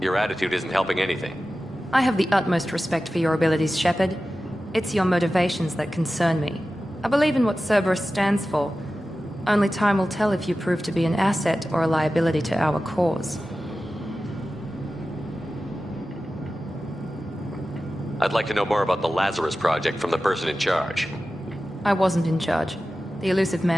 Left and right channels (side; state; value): both; normal; correlation 0.94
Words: Your attitude isn't helping anything. I have the utmost respect for your abilities, Shepard. It's your motivations that concern me. I believe in what Cerberus stands for. Only time will tell if you prove to be an asset or a liability to our cause. I'd like to know more about the Lazarus Project from the person in charge. I wasn't in charge. The Elusive